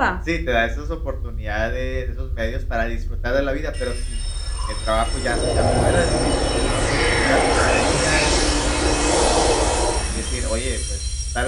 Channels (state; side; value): identical; both; correlation 1.00